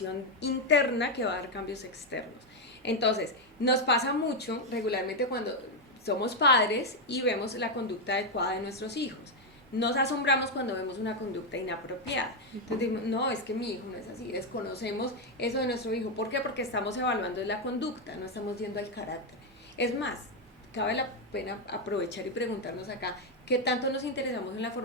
interna que va a dar cambios externos. Entonces, nos pasa mucho regularmente cuando somos padres y vemos la conducta adecuada de nuestros hijos. Nos asombramos cuando vemos una conducta inapropiada. Entonces decimos, no, es que mi hijo no es así, desconocemos eso de nuestro hijo. ¿Por qué? Porque estamos evaluando la conducta, no estamos yendo al carácter. Es más, cabe la pena aprovechar y preguntarnos acá, ¿qué tanto nos interesamos en la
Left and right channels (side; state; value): both; normal; correlation 0.03